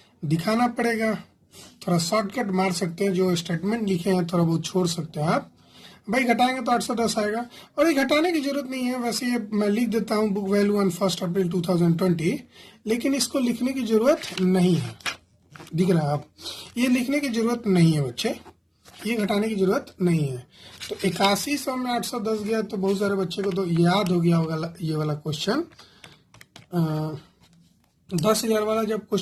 दिखाना पड़ेगा। थोड़ा शॉर्टकट मार सकते हैं, जो स्टेटमेंट लिखे हैं थोड़ा बहुत छोड़ सकते हैं आप। भाई घटाएंगे तो 810 आएगा, और ये घटाने की जरूरत नहीं है। वैसे ये मैं लिख देता हूँ बुक वैल्यू ऑन 1 अप्रैल 2020, लेकिन इसको लिखने की जरूरत नहीं है। दिख रहा है आप, ये लिखने की जरूरत नहीं है बच्चे, ये घटाने की जरूरत नहीं है। तो 8100 में 810 गया, तो बहुत सारे बच्चे को तो याद हो गया होगा ये वाला क्वेश्चन। 10,000 वाला जब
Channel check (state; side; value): identical; both; correlation 1.00